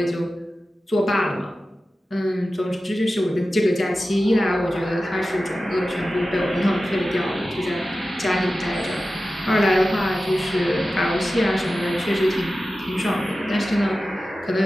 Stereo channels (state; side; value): normal; both; correlation 0.94